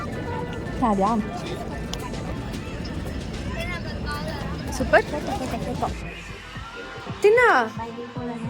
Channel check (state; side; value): identical; both; correlation 1.00